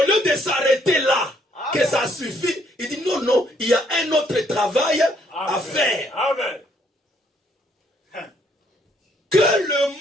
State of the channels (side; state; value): both; normal; correlation 0.68